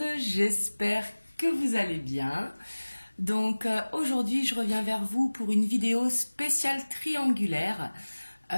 j'espère que vous allez bien. Donc aujourd'hui je reviens vers vous pour une vidéo spéciale triangulaire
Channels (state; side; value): inverted; both; correlation -1.00